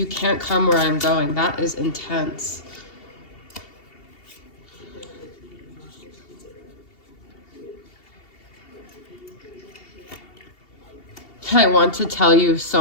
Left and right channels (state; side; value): late; right; 2.7 ms